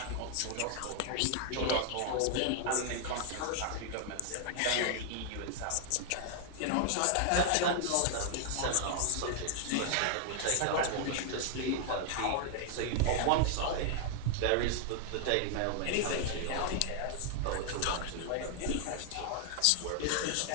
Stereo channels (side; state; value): both; different; correlation 0.00